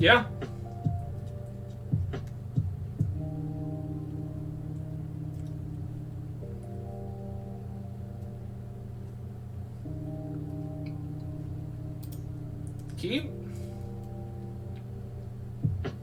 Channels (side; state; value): both; identical; correlation 1.00